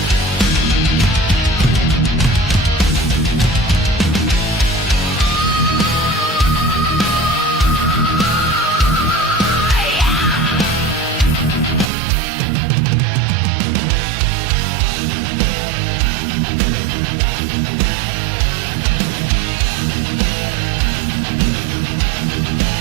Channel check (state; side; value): drops out; left; at 11.9 s